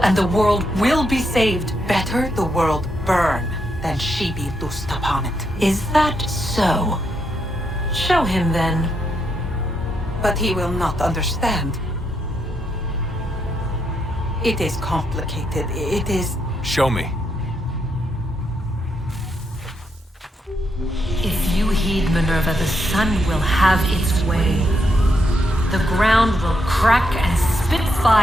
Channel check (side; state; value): both; normal; correlation 0.79